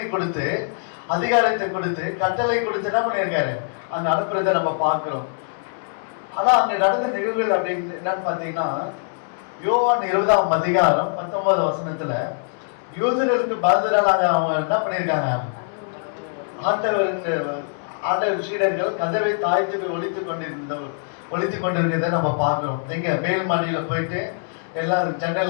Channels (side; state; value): right; silent; digital silence